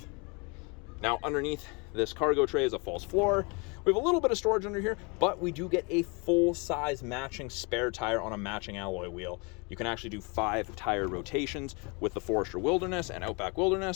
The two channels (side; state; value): right; quieter; 30.7 dB